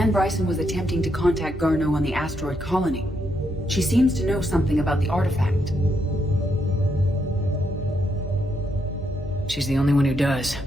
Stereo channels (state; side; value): normal; both; correlation 0.78